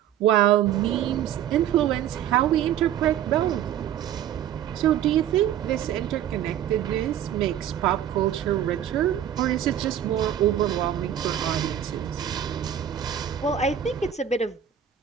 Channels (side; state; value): left; quieter; 10.3 dB